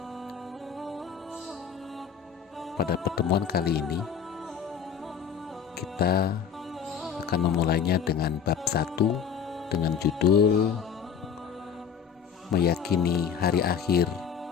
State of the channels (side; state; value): right; quieter; 7.5 dB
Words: pada pertemuan kali ini kita akan memulainya dengan bab 1 dengan judul Meyakini Hari Akhir